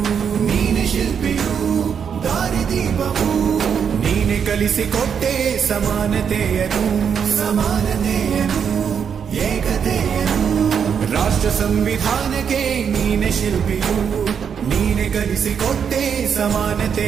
ಶಿಲ್ಪಿಯು ದಾರಿದೀಪವು ನೀನೆ ಕಲಿಸಿಕೊಟ್ಟೆ ಸಮಾನತೆಯನು ಏಕತೆಯನು ರಾಷ್ಟ್ರ ಸಂವಿಧಾನಕ್ಕೆ ನೀನೆ ಶಿಲ್ಪಿಯು ನೀನೆ ಕಲಿಸಿಕೊಟ್ಟೆ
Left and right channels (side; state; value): left; quieter; 7.3 dB